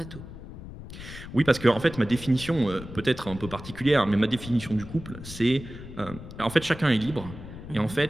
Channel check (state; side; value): noise; left; rumble, 13 dB below the sound